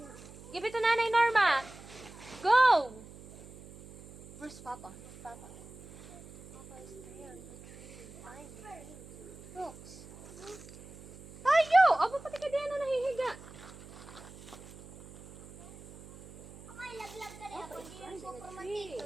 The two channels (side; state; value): right; noise; hum, 18 dB below the sound